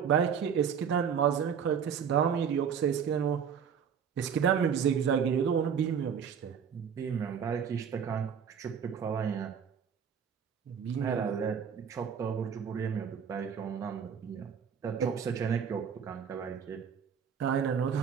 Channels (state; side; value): quieter; left; 7.4 dB